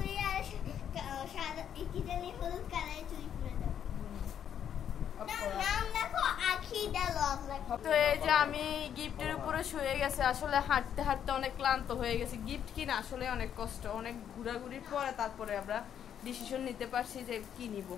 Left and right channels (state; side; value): quieter; right; 9.2 dB